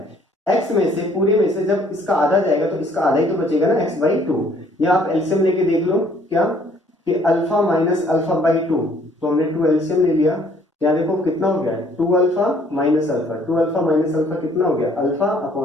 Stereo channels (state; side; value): normal; both; correlation 0.61